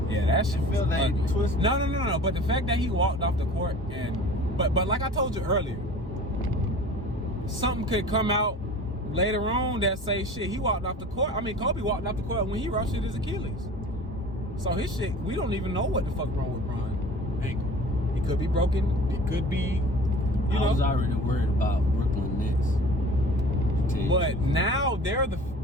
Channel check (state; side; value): normal; both; correlation 0.42